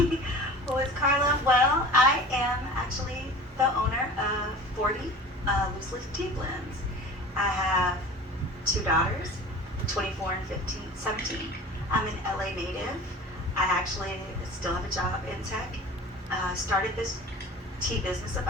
is Karla? Well, I am actually the owner of 40 Loose Leaf Tea Blends. I have two daughters, 24 and 17. I'm an LA native. I actually still have a job in tech. Started this tea business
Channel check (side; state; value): both; normal; correlation 0.40